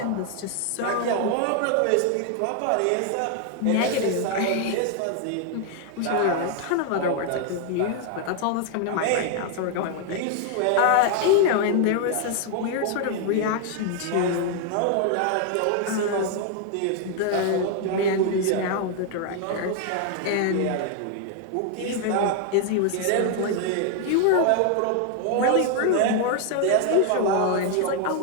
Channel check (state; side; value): different; both; correlation 0.00